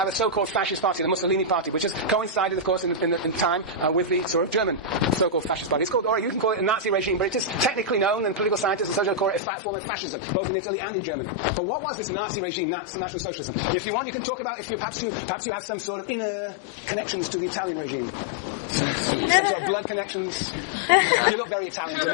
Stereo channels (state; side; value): drops out; right; at 9.4 s